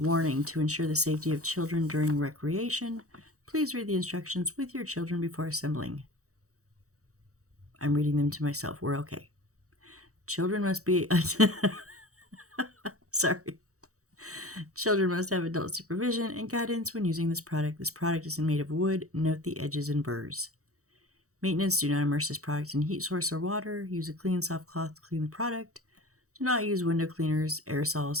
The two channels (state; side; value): late; left; 0.65 ms